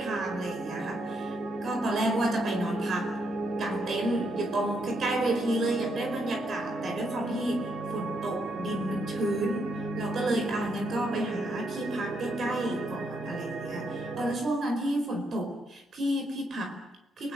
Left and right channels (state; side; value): normal; both; correlation 0.77